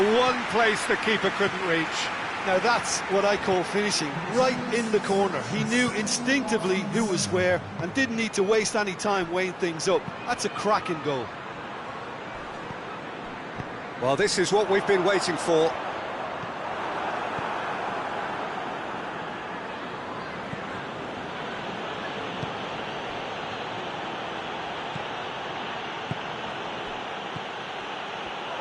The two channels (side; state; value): both; identical; correlation 1.00